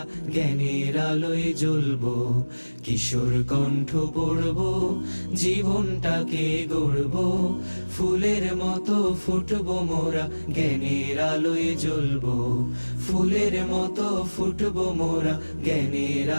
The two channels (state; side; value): inverted; both; correlation -1.00